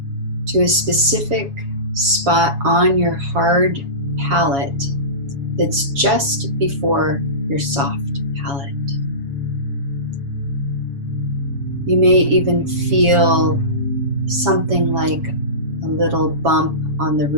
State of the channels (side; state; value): left; late; 7.2 ms